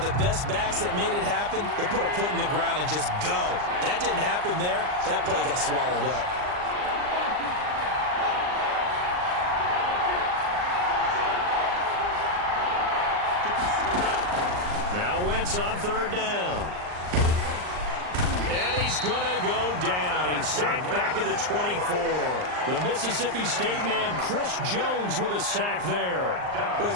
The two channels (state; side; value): late; left; 39 ms